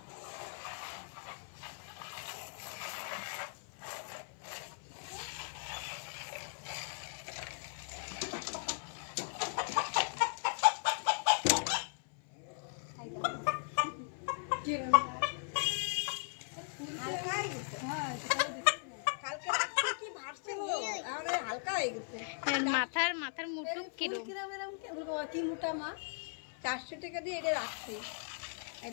মাথার মুটুক কিরম কি মোটা মা, 400 টাকা দিয়ে এটা রাখছি।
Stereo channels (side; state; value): right; silent; 52 dB below the other